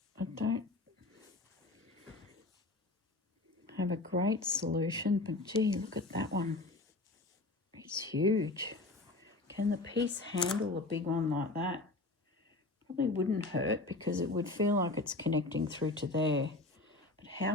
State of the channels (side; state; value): right; quieter; 3.1 dB